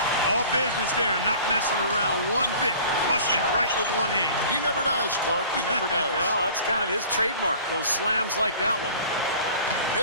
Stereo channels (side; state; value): both; inverted; correlation -0.45